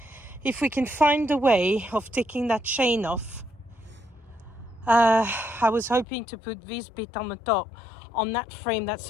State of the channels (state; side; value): drops out; right; at 6.1 s